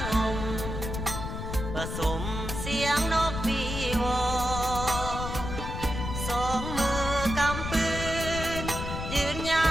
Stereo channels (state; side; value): noise; left; rumble, 5 dB below the sound